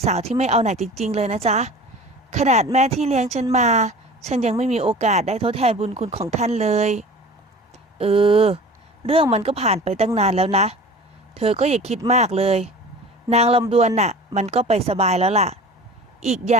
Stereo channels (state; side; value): normal; both; correlation 0.40